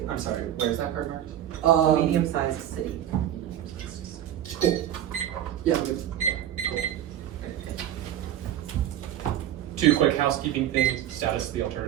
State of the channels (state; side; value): quieter; left; 11.4 dB